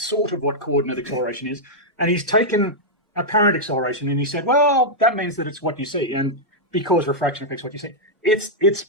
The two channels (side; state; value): both; normal; correlation -0.06